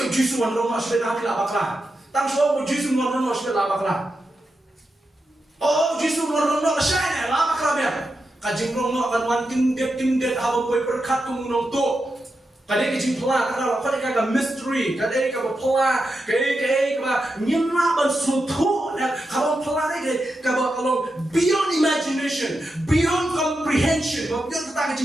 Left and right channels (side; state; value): both; normal; correlation 0.88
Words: Jisu wan rumah sudah nak bakla. Tang so Jisu wan rumah sudah bakla. Oh, Jisu wan rumah saya lah bakla biar. Kejumlah nak akan wan kendit habom poi berkat kumunong tu. Kadang kecing pelah, kadang kagak mystery, kadang kagak pelah, kadang nyemah ban suatu, kalau pelah ni kalau beyond imagination, beyond comprehension, beyond kita